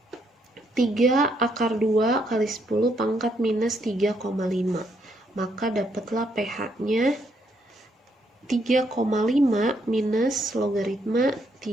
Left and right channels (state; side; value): normal; both; correlation 0.73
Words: 3 akar 2 kali 10 pangkat minus 3,5. Maka dapatlah pH-nya 3,5 minus logaritma